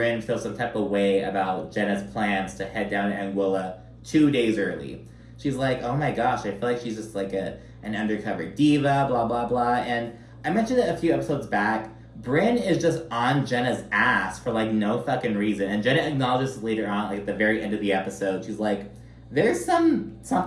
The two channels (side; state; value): both; identical; correlation 1.00